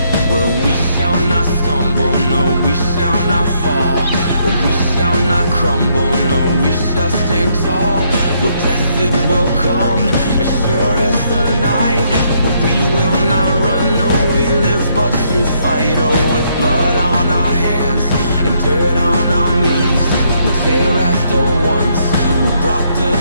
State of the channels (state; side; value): inverted; both; correlation -0.72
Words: Well, we shall not stumble, no, we shall not fall. We shall not crumble, no, we shall stand tall. Well, death it will come, as sure as the night. But we will not run, no, we live but to fight. Oh, with blood on our hands and dirt on our knees, we'll tear at the ones who brought the